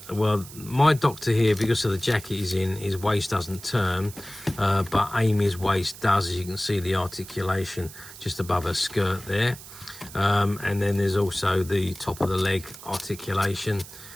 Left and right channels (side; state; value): right; noise; hiss, 16 dB below the sound